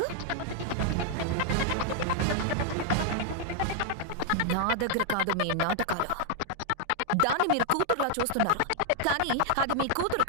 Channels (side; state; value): both; different; correlation -0.01